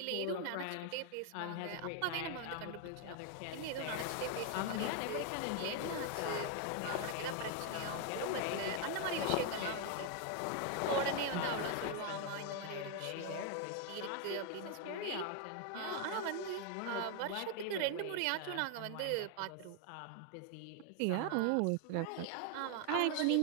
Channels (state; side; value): different; both; correlation 0.00